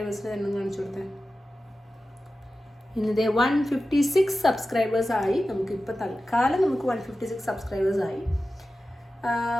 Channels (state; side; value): normal; both; correlation 0.94